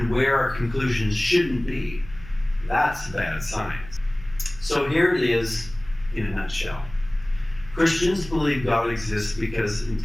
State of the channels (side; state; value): right; noise; hum, 17 dB below the sound